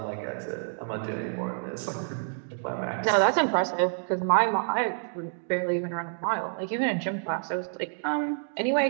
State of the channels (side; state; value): left; silent; digital silence